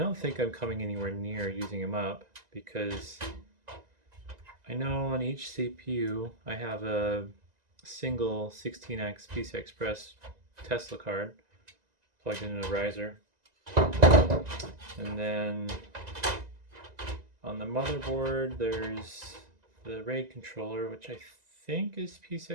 think I'm coming anywhere near using them up, because I know on each CPU I have a single 16x PCI Express Tesla card plugged into a riser. And then on the motherboard there's the RAID controller, which I think is PCI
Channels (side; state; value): left; late; 1.9 ms